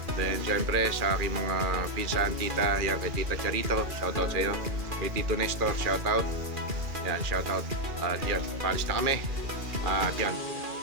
Then, syempre, sa aking mga pinsan, tita, yan, kay Tita Charito, shoutout sa iyo. Kay Tito Nestor, shoutout. Yan, shoutout. At yan, palis na kami. At yan,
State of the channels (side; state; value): left; late; 2.4 ms